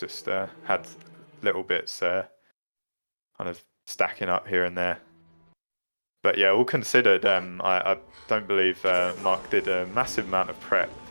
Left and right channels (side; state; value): both; inverted; correlation -1.00